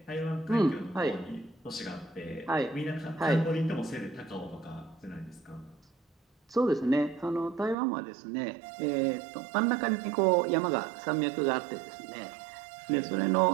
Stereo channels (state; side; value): drops out; left; at 7.8 s